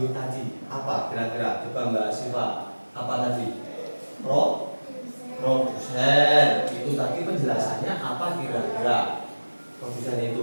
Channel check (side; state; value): both; inverted; correlation -1.00